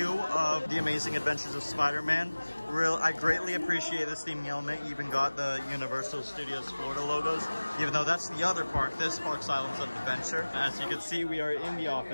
of The Amazing Adventures of Spider-Man. I greatly appreciate this theming element. You even got the Universal Studios Florida logos, even though that's the other park. This park's Islands of Adventure. As you can see, we are in the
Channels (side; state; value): both; inverted; correlation -1.00